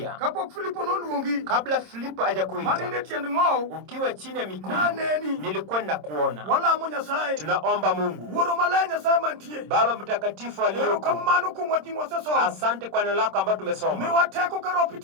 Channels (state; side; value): late; left; 26 ms